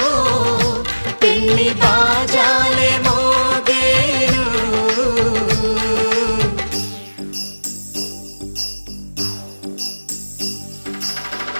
పెళ్లి బాజాలే మోగేను.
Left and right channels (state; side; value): inverted; both; correlation -1.00